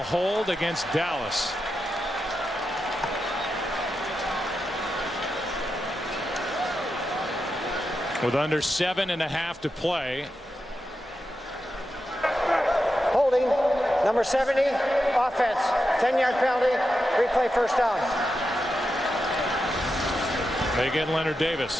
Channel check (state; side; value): normal; both; correlation 0.88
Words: hold against Dallas. With under 7.5 to play. Holding, number 70, offense. 10-yard penalty, replay first down. They get Leonard